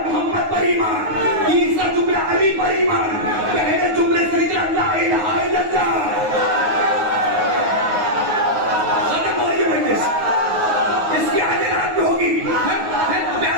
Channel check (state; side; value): late; left; 9.5 ms